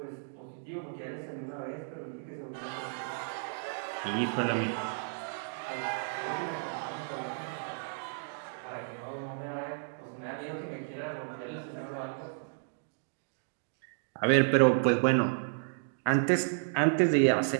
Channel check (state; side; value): silent; left; digital silence